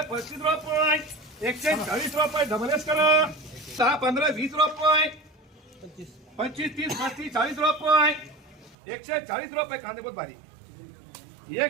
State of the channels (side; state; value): left; drops out; at 8.8 s